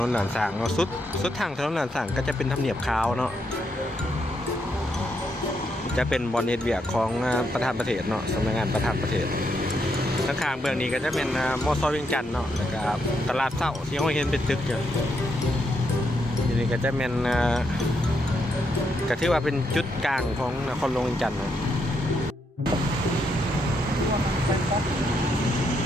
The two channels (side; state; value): both; normal; correlation 0.79